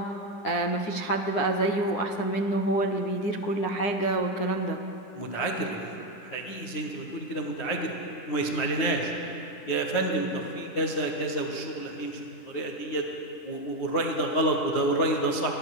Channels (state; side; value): late; right; 9.6 ms